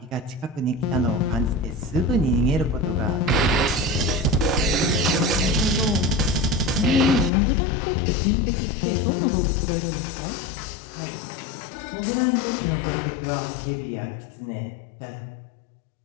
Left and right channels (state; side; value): drops out; right; at 7.3 s